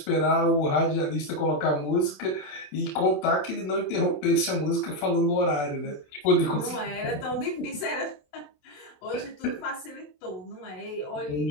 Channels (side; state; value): right; late; 27 ms